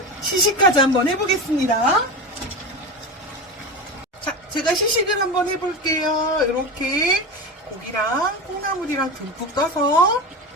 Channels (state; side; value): normal; both; correlation 0.24